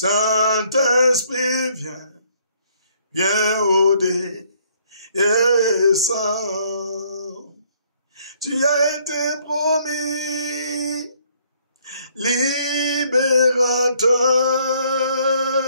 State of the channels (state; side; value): inverted; both; correlation -0.65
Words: viens, viens au descends. Tu as été promis,